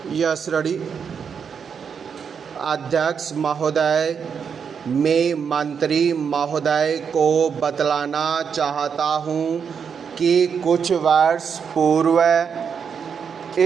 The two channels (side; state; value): left; quieter; 6.7 dB